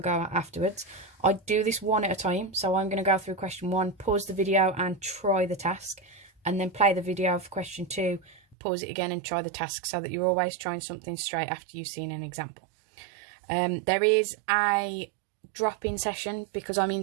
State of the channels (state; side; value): drops out; left; at 8.6 s